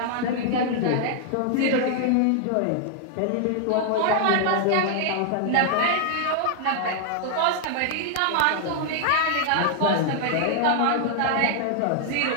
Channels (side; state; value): both; different; correlation 0.00